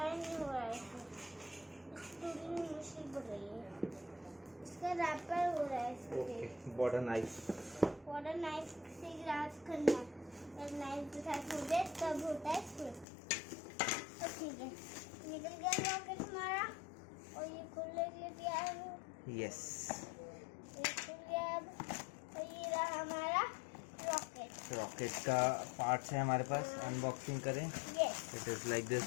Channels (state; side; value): drops out; right; at 13.1 s